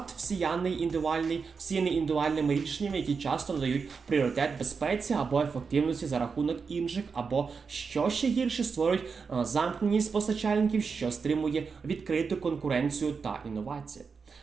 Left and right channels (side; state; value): left; quieter; 5.3 dB